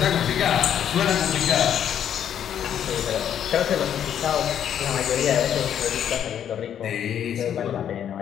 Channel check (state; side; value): quieter; right; 9.5 dB